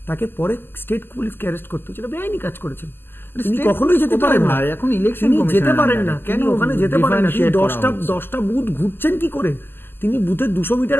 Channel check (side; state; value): right; late; 0.10 ms